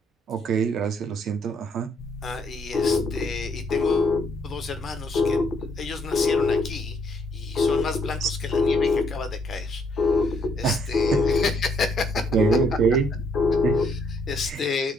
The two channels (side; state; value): both; normal; correlation 0.70